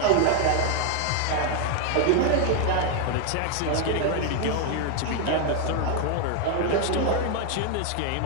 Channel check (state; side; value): different; both; correlation 0.00